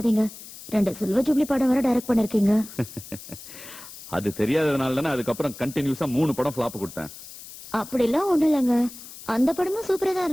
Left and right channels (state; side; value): noise; left; hiss, 15 dB below the sound